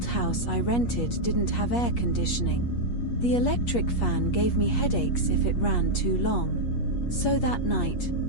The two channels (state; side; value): late; right; 8.4 ms